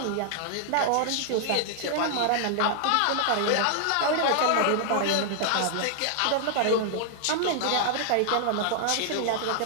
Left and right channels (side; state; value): both; different; correlation -0.01